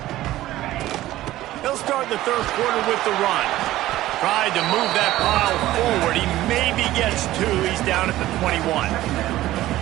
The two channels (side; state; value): left; quieter; 15.4 dB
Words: He'll start the third quarter with the run. Tried to move that pile forward. He maybe gets 2. He's down at the 21.